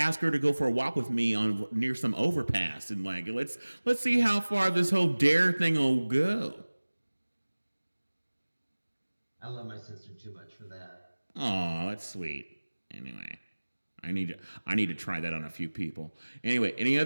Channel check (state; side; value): inverted; both; correlation -1.00